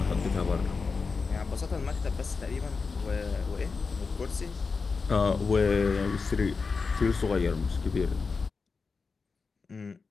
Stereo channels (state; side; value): quieter; right; 4.7 dB